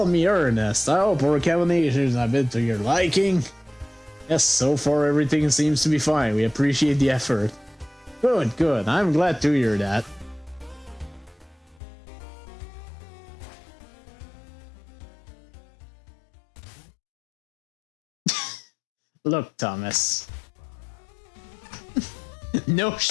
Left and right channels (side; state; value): right; drops out; at 11.8 s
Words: me Ernest. I hope our combinations have been to your liking. Yes, so far everything seems to be fine. We appreciate the effort. Good, good. I'm glad to hear that. Look, Thomas. No